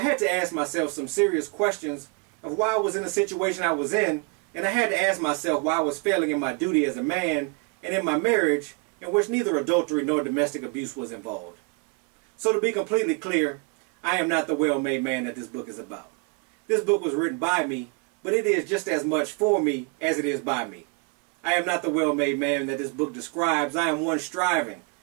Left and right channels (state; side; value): quieter; left; 31.7 dB